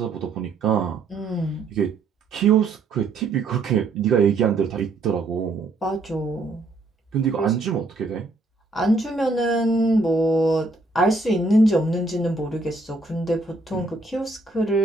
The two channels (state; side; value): quieter; left; 3.3 dB